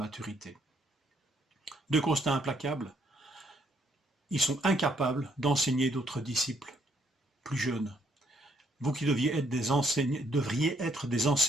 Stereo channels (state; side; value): normal; both; correlation 0.70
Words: Deux constats implacables. Ils sont incapables d'enseigner d'autres disciples plus jeunes. Vous qui devriez être des